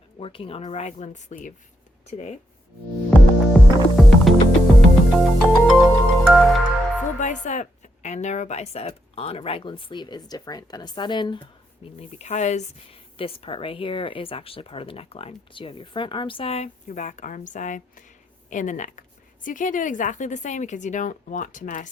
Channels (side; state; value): both; normal; correlation 0.80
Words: working on a raglan sleeve today. Full bicep and narrow bicep on a raglan sleeve is different than a set-in, mainly because this part right here is actually part of the neckline. So you have your front arm side, your back arm side, and the neck. So you can't do it exactly the same because you don't want to